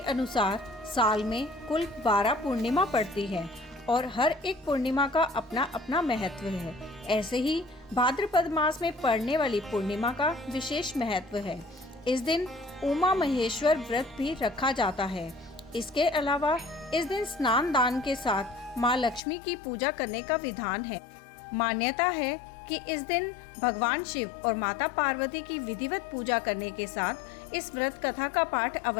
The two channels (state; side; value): drops out; right; at 19.2 s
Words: साल में कुल 12 पूर्णिमा पड़ती है और हर एक पूर्णिमा का अपना अपना महत्व है। ऐसे ही भाद्रपद मास में पड़ने वाली पूर्णिमा का विशेष महत्व है। इस दिन उमा महेश्वर व्रत भी रखा जाता है। इसके अलावा इस दिन स्नान दान के साथ माँ लक्ष्मी की पूजा करने का विधान है। मान्यता है कि इस दिन भगवान शिव और माता पार्वती की विधिवत पूजा करने के साथ इस व्रत कथा का पाठ